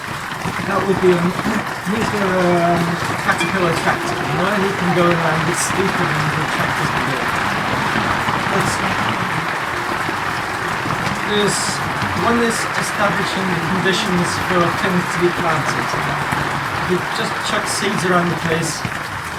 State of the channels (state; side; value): identical; both; correlation 1.00